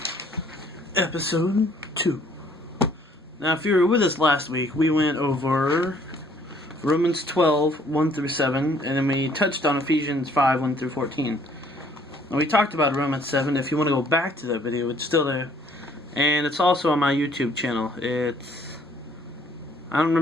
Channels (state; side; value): normal; both; correlation 0.61